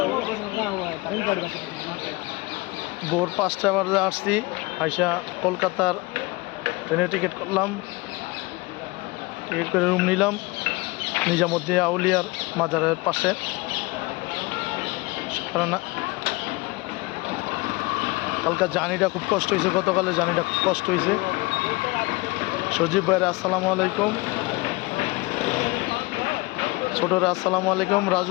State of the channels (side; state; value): right; quieter; 23.4 dB